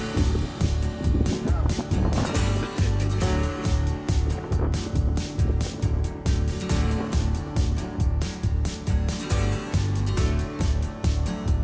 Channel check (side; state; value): both; identical; correlation 1.00